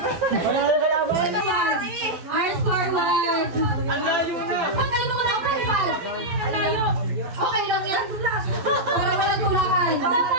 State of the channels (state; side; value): late; left; 12 ms